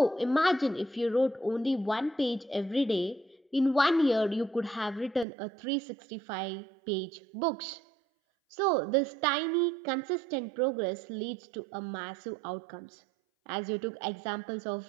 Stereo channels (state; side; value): drops out; left; at 5.2 s